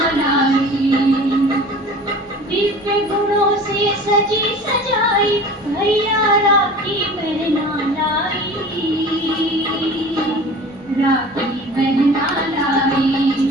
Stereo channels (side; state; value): both; normal; correlation 0.41